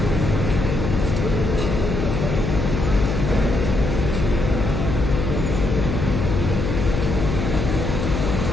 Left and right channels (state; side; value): noise; left; hum, 2 dB below the sound